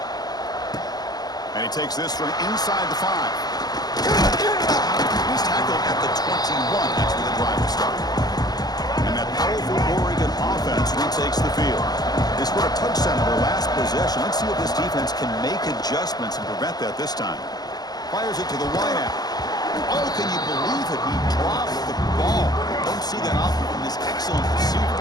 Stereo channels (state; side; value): late; right; 0.19 ms